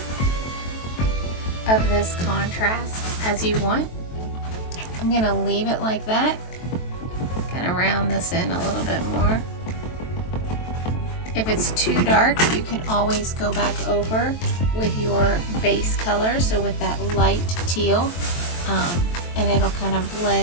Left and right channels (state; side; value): late; right; 23 ms